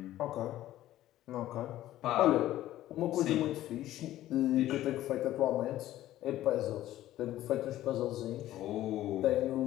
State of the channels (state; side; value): quieter; right; 14.1 dB